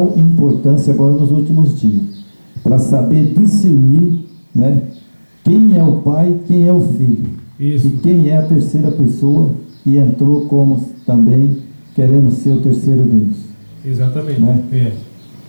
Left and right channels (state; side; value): inverted; both; correlation -1.00